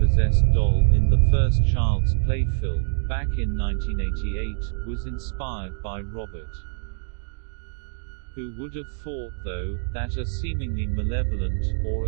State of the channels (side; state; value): left; silent; digital silence